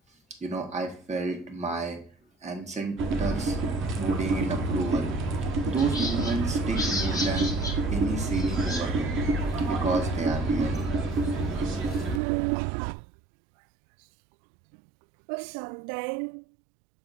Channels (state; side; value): drops out; left; at 12.2 s